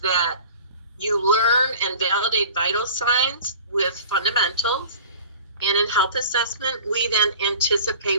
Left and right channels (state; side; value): inverted; both; correlation -0.42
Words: you learn and validate vital signs with fundamentals. And in health assessment, we then